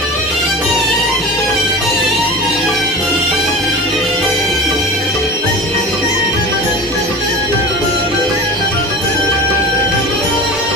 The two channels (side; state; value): both; normal; correlation 0.33